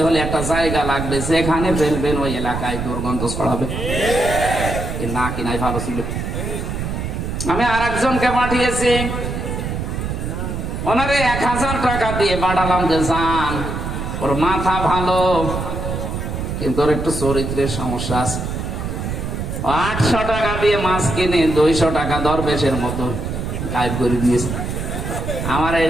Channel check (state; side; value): noise; right; rumble, 4 dB below the sound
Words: হলে একটা জায়গা লাগবে, যেখানে ফেলবেন ওই এলাকায় দুর্গন্ধ ছড়াবে। না কিনাই ভালো ছিল। আমি আর একজনকে পাঠিয়েছি, ওনারে 1000 টাকা দিয়ে পাঠালাম যে যান, ওর মাথা ভালো, কিন্তু ওর একটু চরিত্রের সমস্যা আছে। 800 টাকা দিয়ে মাছ কিনে 200 টাকা দরবেশের মতো গায়েব করে দিয়েছে। আমার